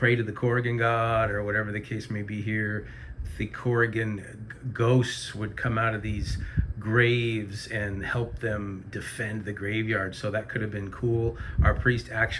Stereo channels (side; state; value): both; identical; correlation 1.00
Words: to the Corrigan god or whatever the case may be here, the Corrigan ghosts would come out of these graves and help them defend the graveyard. So that could have been cool. Our priest